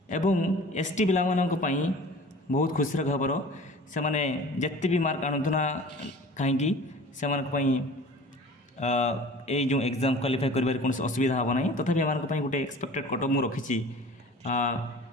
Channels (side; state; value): both; normal; correlation 0.43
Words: एवं एसटी पिला मानक पई बहुत खुशीर खबर से माने जत्ते भी मार्क आनुना कहीं से मानक पई ए जो एग्जाम क्वालिफाई करिबार कोनोसी असुविधा हबो नाही। तथापि मानक पई गोटे एक्सपेक्टेड कट ऑफ मु रखिछि